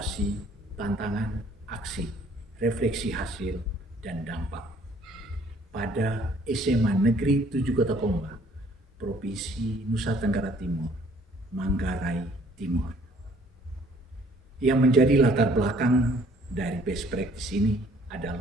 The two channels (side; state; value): both; normal; correlation 0.59